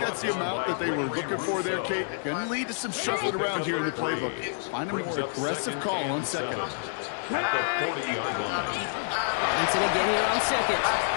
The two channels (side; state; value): right; silent; digital silence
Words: the amount that they were looking for there, Kate. Going to lead to some shuffling around here in the playbook. Find a more aggressive call on 2nd. At the 40-yard line. Robinson again here on 2nd.